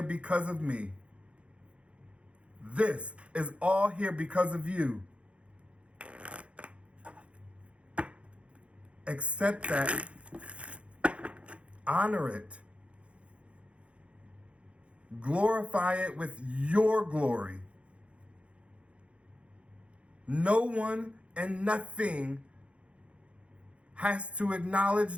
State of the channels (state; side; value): late; left; 0.061 ms